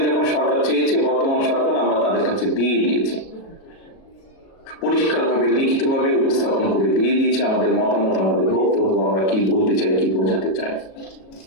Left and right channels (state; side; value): late; right; 37 ms